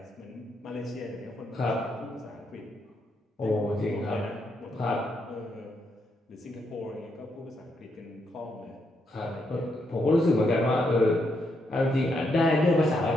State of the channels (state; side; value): normal; both; correlation 0.78